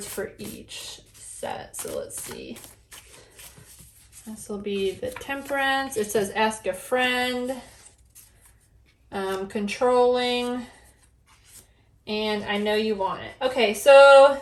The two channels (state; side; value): identical; both; correlation 1.00